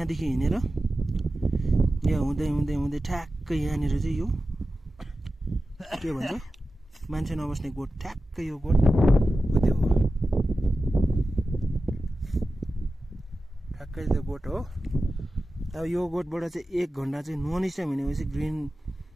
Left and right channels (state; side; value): normal; both; correlation 0.93